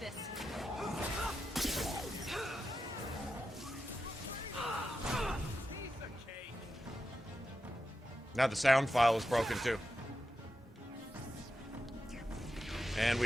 Now the sound file is broken too. And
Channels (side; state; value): both; normal; correlation 0.89